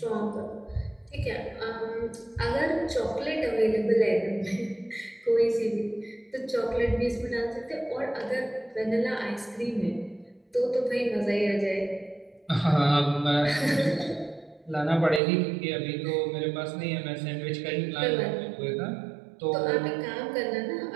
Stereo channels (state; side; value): drops out; left; at 15.2 s